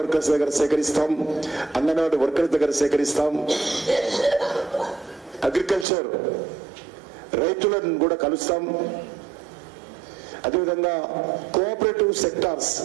దగ్గర సేకరిస్తాం, అంగన్వాడీ వర్కర్స్ దగ్గర సేకరిస్తాం. అగ్రికల్చర్ రైతులను కూడా కలుస్తాం. అదేవిధంగా కోఆపరేటివ్ సెక్టార్స్,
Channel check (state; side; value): drops out; left; at 5.9 s